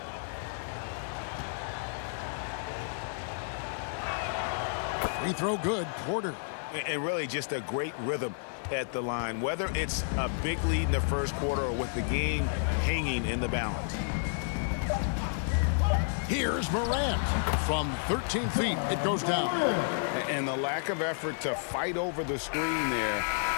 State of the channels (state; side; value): silent; right; digital silence